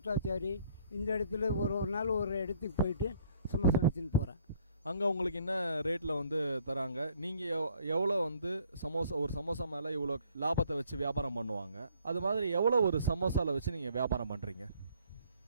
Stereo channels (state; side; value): inverted; both; correlation -0.62